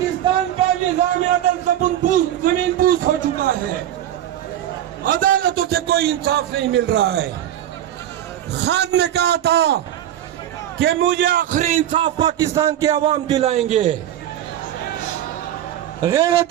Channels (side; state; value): left; quieter; 11.7 dB